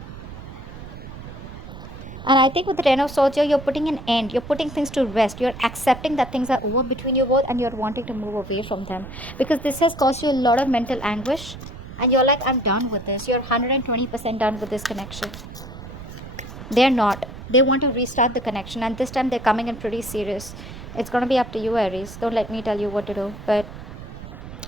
And I think with the Ten of Swords here, you're putting an end. You're putting things to rest. You're accepting that things are over between you both and you're wanting to move away from them. Because this has caused you a lot of mental anguish. And you're like, I'm done with this. You're 120% done with this connection. They're not. They want to restart the connection. And this time they're coming in pretty serious. It's going to be up to you, Aries. Don't let me tell you what to do. But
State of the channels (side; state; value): right; noise; rumble, 13 dB below the sound